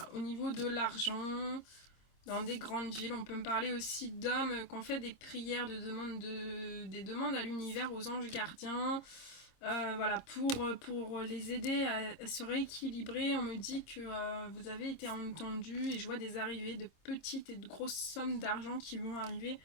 au niveau de l'argent dans des grandes villes. On peut me parler aussi d'hommes qui ont fait des prières des demandes à l'univers, aux anges gardiens. Voilà, pour les aider à se rééquilibrer, on me dit que vous avez été entendu et je vois des arrivées de petites et de grosses sommes d'argent qui vont arriver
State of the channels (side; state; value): right; late; 26 ms